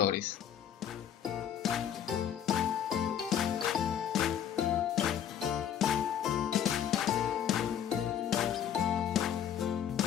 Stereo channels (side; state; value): right; quieter; 9.4 dB